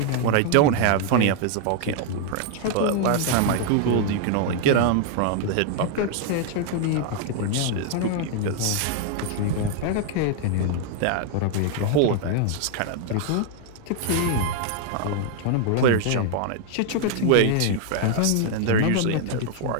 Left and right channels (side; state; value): both; different; correlation 0.00